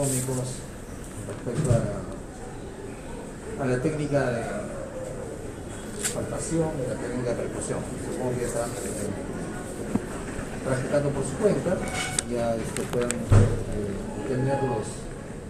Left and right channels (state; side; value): identical; both; correlation 1.00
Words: respecto a la técnica de palpación y la técnica de percusión. Supongo que ya están practicando por su cuenta, ya puedan tener